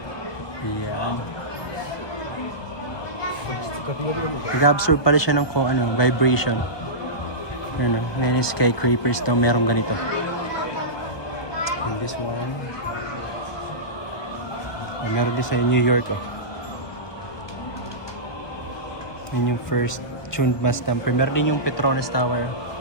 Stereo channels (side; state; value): right; late; 1.2 ms